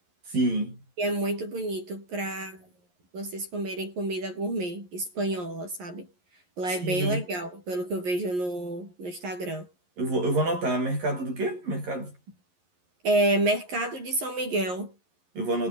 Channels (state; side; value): late; left; 11 ms